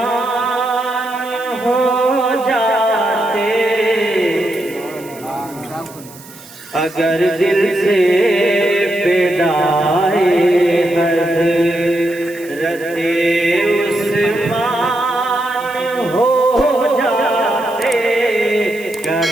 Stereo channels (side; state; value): right; noise; hiss, 20 dB below the sound